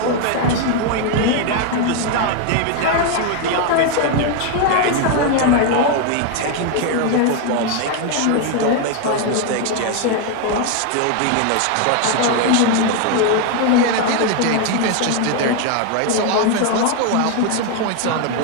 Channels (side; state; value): both; different; correlation 0.01